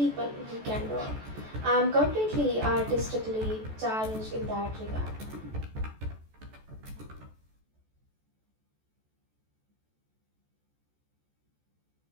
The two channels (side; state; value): left; late; 14 ms